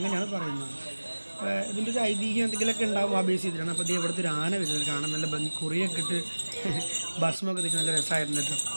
പറയുന്നത്. ഇതിൻ്റെ ഒരു ഐതിഹ്യം എന്തെങ്കിലുമൊക്കെ ഉണ്ടാവും ആ ബേസ് ചെയ്തിട്ടാണ്. അപ്പോൾ ഇത് ഇവിടുത്തെ ഒരു ആന വരുന്നത് കാണാൻ നല്ല ഭംഗി, കുറിയൊക്കെ ഇട്ട് ഭക്ഷണമൊക്കെ തിരിച്ച് നല്ല രസമായിരുന്നു കേട്ടോ,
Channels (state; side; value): inverted; both; correlation -1.00